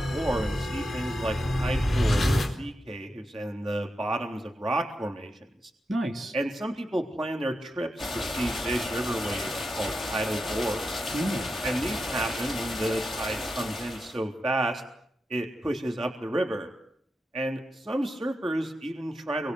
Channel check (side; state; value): both; normal; correlation 0.88